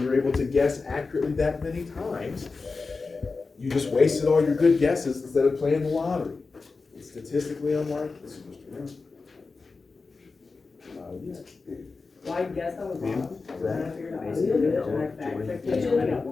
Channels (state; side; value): quieter; right; 4.2 dB